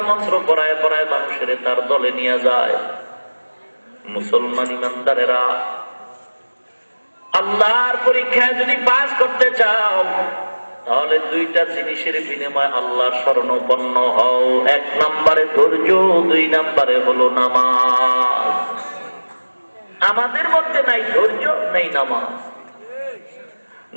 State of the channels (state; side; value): inverted; both; correlation -1.00